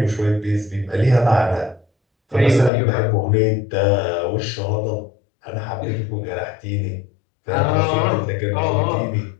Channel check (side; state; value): right; drops out; at 2.7 s